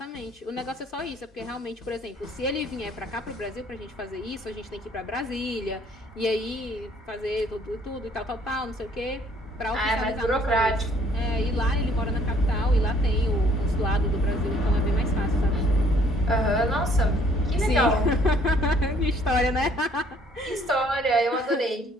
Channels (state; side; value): normal; both; correlation 0.61